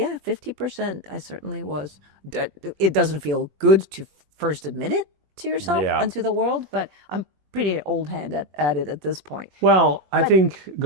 50%. I certainly was. It doesn't feel good to first admit it to yourself Yeah. and to the world, but I'm pretty old hand at it at this point. Well, I But- think,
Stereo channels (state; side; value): late; left; 21 ms